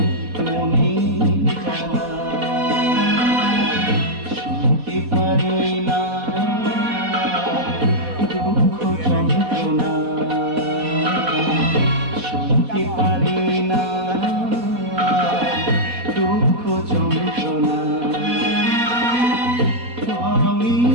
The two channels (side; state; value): left; late; 4.1 ms